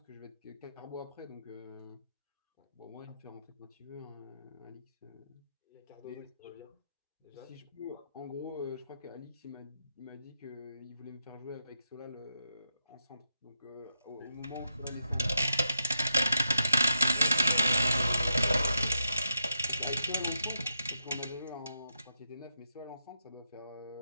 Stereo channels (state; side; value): inverted; both; correlation -0.84